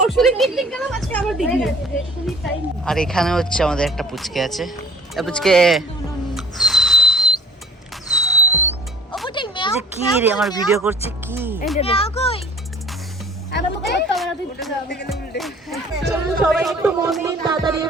পিকনিক গেলাম, আজকে আবার পিকনিক। আর এখানে হচ্ছে আমাদের একটা পুচকে আছে। পুচকে কি রে আমার ভিডিও করছে কি? সবাই একটু মন দিন, তাড়াতাড়ি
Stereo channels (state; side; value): normal; both; correlation 0.49